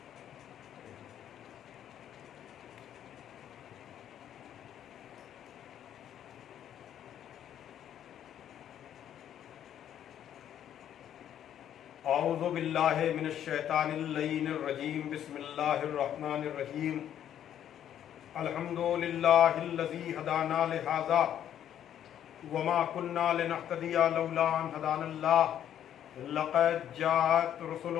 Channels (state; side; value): quieter; right; 10.3 dB